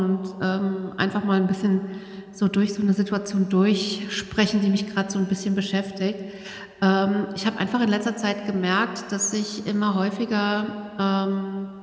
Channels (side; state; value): both; identical; correlation 1.00